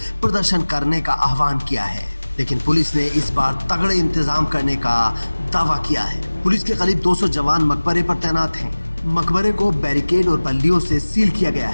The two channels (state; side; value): inverted; both; correlation -1.00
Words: प्रदर्शन करने का आह्वान किया है। लेकिन पुलिस ने इस बार तगड़े इंतजाम करने का दावा किया है। पुलिस के करीब 200 जवान मकबरे पर तैनात हैं। मकबरे को बैरिकेड और बल्लियों से सील किया गया